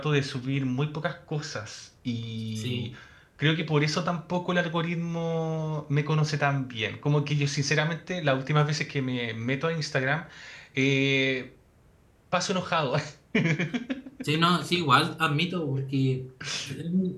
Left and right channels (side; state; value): both; identical; correlation 1.00